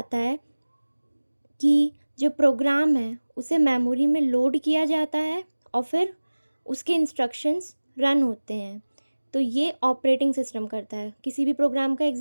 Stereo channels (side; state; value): both; inverted; correlation -1.00